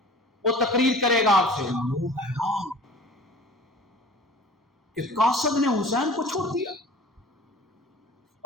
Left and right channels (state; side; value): normal; both; correlation 0.45